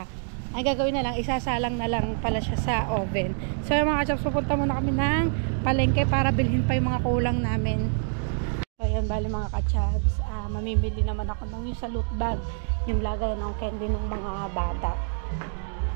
Ay, gagawin na lang. Isasalang na lang pala siya sa oven. So, yung mga ka-chabs, pupunta muna kami ng palengke para bilhin pa yung mga kulang namin. So, yan, bali, mga ka-chabs. Mamimili naman ako ng yung sa loot bag. Yung lagay ng candy ng mga bata.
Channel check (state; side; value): silent; left; 61 dB below the other